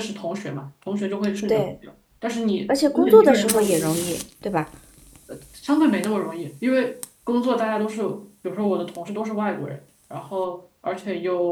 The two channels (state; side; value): identical; both; correlation 1.00